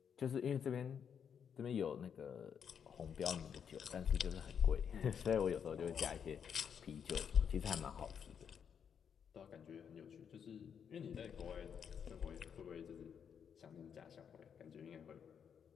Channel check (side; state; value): right; quieter; 7.6 dB